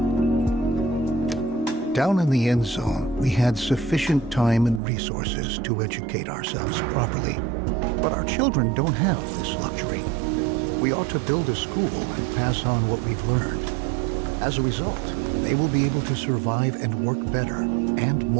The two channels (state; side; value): drops out; left; at 4.8 s